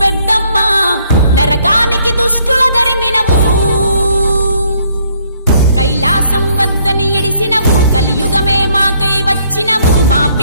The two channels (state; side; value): inverted; both; correlation -0.66